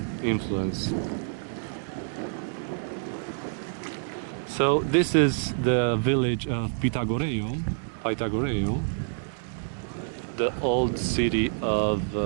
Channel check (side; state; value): left; silent; digital silence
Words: influence. So this is the village of Pythagorean, the old city of